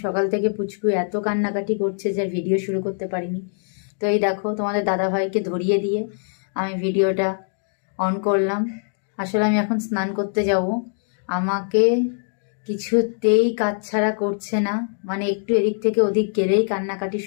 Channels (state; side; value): silent; right; digital silence